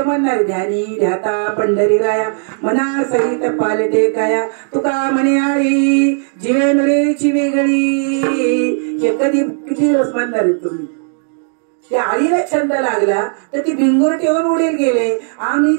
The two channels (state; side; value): silent; left; digital silence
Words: ध्यानी ध्याता पंढरी राया मना सहित पालटे काया. तुका म्हणे आळी जीवेंद्रेची वेगळी. हे किती दिवस म्हणणार आहे तुम्ही? त्या आळीला छंद लागला तर ती भिंगूर ठेवून उडील गेले. आम्ही